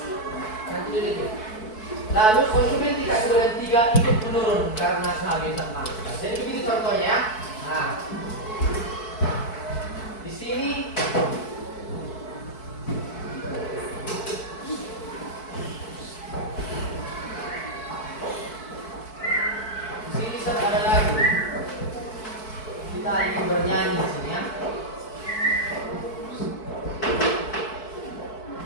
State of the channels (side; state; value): right; late; 4.6 ms